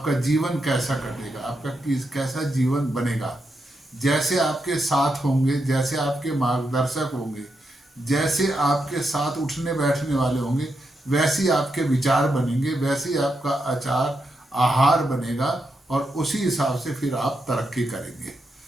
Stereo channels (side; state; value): both; normal; correlation 0.84